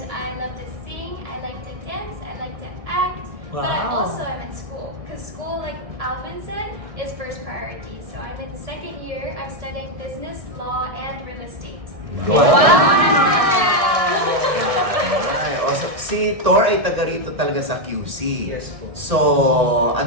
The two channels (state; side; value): late; left; 1.6 ms